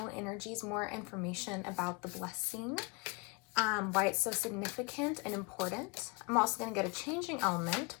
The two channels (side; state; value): right; quieter; 30.0 dB